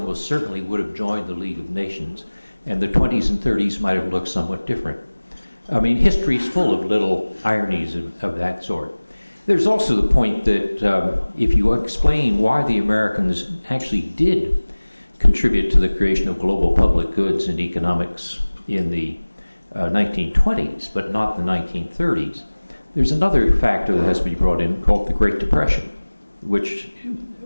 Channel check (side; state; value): both; inverted; correlation -1.00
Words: certainly would have joined the League of Nations, and the 20s and 30s might have looked somewhat different. I mean, history is full of little ironies of that sort. There's also the point that if you explain why the Americans actually did contribute to the creation of global public goods and economics in the 1920s, but not the 1930s, there's another factor that has to be brought in called the Great Depression, which